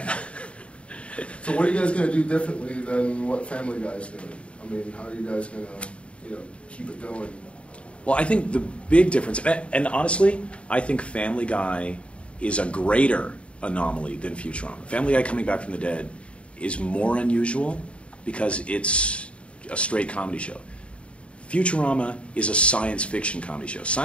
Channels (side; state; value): right; late; 0.060 ms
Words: So what are you guys going to do differently than what Family Guy's doing? How are you guys going to, keep it going? Well, I think the big difference, and honestly, I think Family Guy is a greater anomaly than Futurama. Family Guy coming back from the dead is more unusual because it's a straight comedy show. Futurama is a science fiction comedy show.